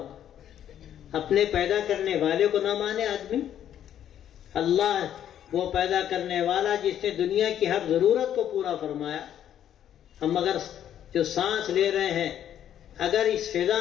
اپنے پیدا کرنے والے کو نہ مانے آدمی۔ اللہ وہ پیدا کرنے والا جس نے دنیا کی ہر ضرورت کو پورا فرمایا۔ ہم اگر جو سانس لے رہے ہیں، اگر اس فضا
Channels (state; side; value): quieter; right; 10.4 dB